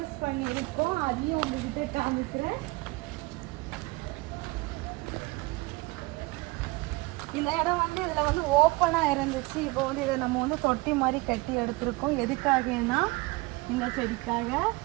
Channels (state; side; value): quieter; left; 23.6 dB